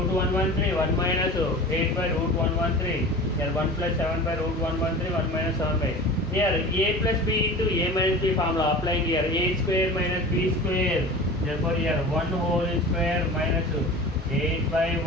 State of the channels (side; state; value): both; normal; correlation 0.36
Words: 113, 1 minus 8 by root 113. Here 1 plus 7 by root 113, 1 minus 7 by. Here a plus b into a minus b formula applying here. A square minus b square. Therefore here 1 whole square minus 8 by